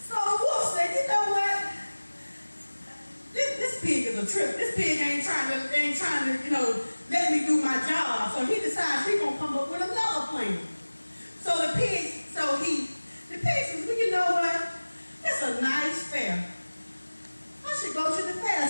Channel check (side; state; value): both; inverted; correlation -1.00